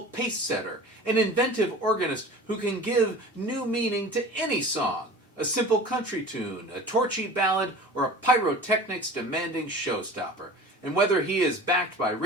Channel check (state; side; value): normal; both; correlation 0.39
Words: pace-setter, an inventive organist who can give new meaning to any song, a simple country tune, a torchy ballad, or a pyrotechnics-demanding showstopper. And whether he is backed by